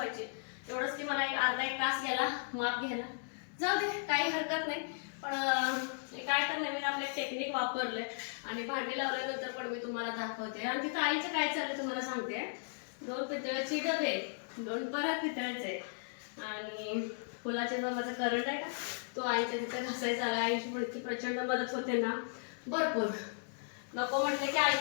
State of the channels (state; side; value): silent; right; digital silence